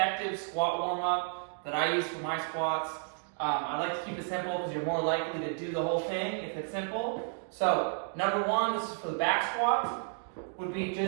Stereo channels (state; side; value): silent; left; 56 dB below the other